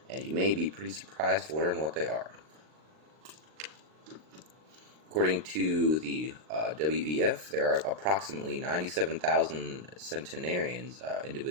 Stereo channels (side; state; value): left; late; 39 ms